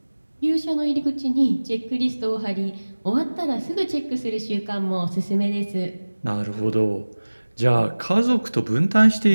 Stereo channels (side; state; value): both; inverted; correlation -1.00